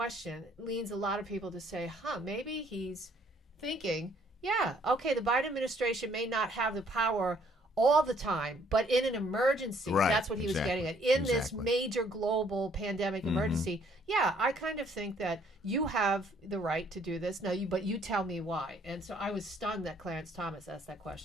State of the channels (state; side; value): normal; both; correlation 0.63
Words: leads a lot of people to say, maybe he's thinking, yeah, okay, the Biden administration may not have the power all the time, but in an emergency, that's what he was getting at. In this major global pandemic emergency, I kind of think that you have the right to do this. But you tell me why. And so I was stunned that Clarence Thomas asked that